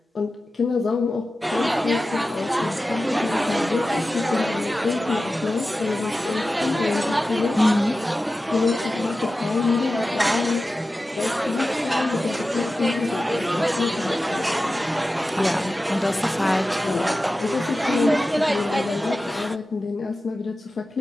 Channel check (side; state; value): both; normal; correlation 0.94